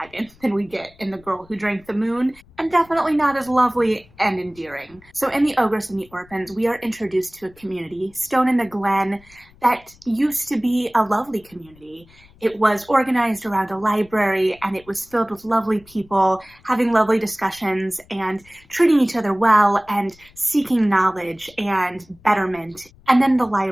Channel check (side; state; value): left; noise; rumble, 27 dB below the sound